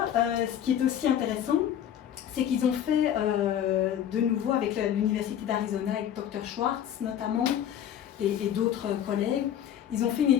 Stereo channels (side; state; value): right; quieter; 10.1 dB